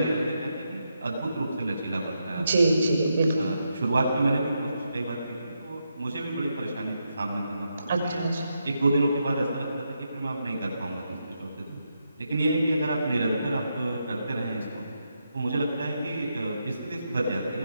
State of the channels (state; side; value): inverted; both; correlation -0.83